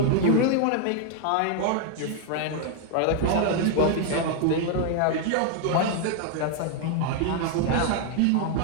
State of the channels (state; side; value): different; both; correlation 0.00